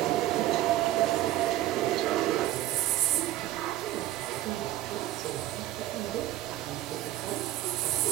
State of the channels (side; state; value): left; quieter; 14.8 dB